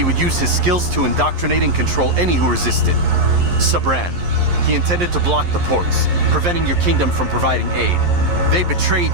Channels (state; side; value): late; left; 11 ms